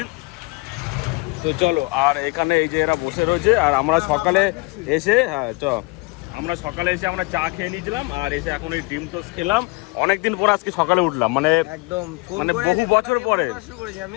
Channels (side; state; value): right; quieter; 26.6 dB